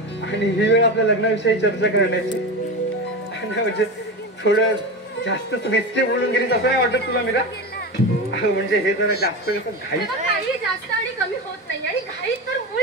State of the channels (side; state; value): both; normal; correlation 0.22